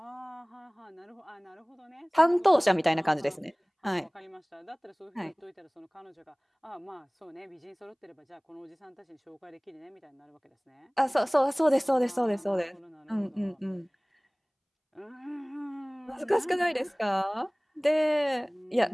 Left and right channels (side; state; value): both; identical; correlation 1.00